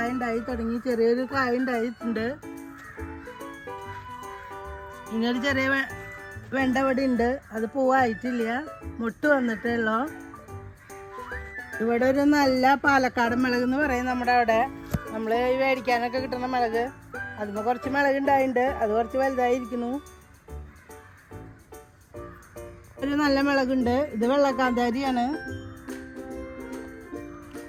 ഉണ്ടായി തുടങ്ങി. ചെറിയൊരു കായ ഉണ്ടായിട്ടുണ്ട്. ഇങ്ങനൊരു ചെറിയ വെണ്ട ഇവിടെ ഉണ്ട്, അത് പൂവായിട്ടില്ല, മുട്ട് വന്നിട്ടുള്ളൂ. ഇവിടെ ഒരു നല്ല പാലക്കാട് മുളക് എന്ന് പറയും നമ്മുടെ അവിടെ. നമ്മൾ ഈ മേടിക്കാനൊക്കെ കിട്ടുന്ന മുളക്, അതിന് കുറച്ച് മുളക് ഉണ്ടായിട്ടുണ്ട്. അത് കുറച്ച് വലുതായിരിക്കുന്നു. ഒരു നല്ല മുളകുണ്ട്. ഇത് വെള്ളക്കാന്താരിയാണ്.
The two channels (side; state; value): both; identical; correlation 1.00